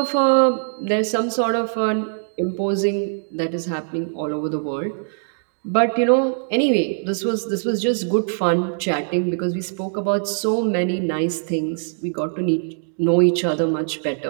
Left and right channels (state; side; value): silent; left; digital silence